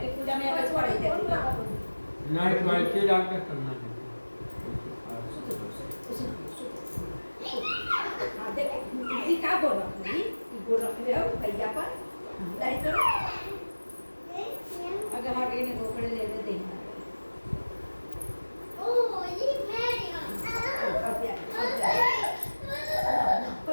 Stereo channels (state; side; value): inverted; both; correlation -1.00